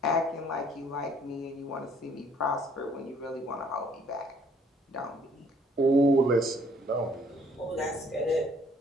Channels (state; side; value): normal; both; correlation 0.61